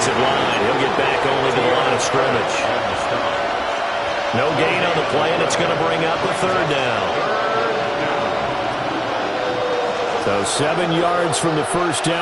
line. He'll get back only to the line of scrimmage. No gain on the play, and it's going to bring up a third down. So 7 yards from the first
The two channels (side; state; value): both; identical; correlation 1.00